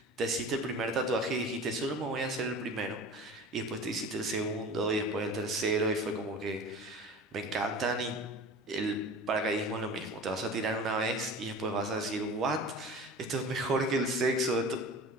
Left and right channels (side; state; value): both; normal; correlation 0.38